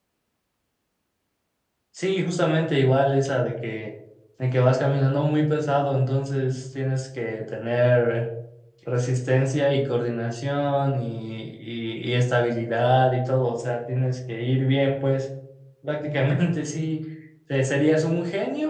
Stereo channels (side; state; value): both; identical; correlation 1.00